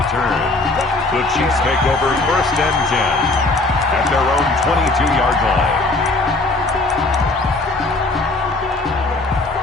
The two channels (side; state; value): right; quieter; 3.1 dB